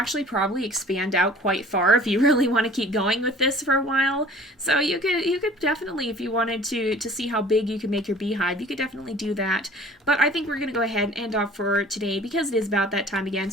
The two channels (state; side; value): normal; both; correlation 0.48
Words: probably expand out quite far if you really want to keep going with this for a while. So you could definitely, if you wanted to see how big you can make your beehive, you could definitely do that. But I think we're going to go ahead and end off for today because it is about that time again.